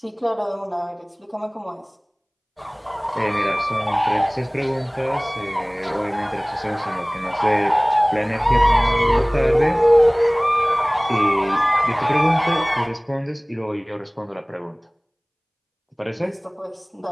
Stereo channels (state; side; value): identical; both; correlation 1.00